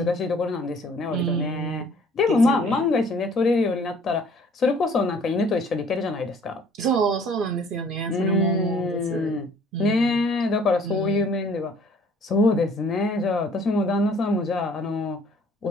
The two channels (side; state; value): both; normal; correlation 0.56